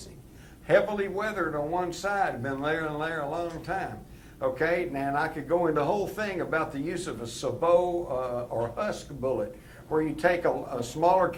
heavily weathered on one side, been there and there a long time. Okay, now and I could go into the whole thing about the use of a sabot or husk bullet, where you take a smaller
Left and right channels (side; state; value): both; identical; correlation 1.00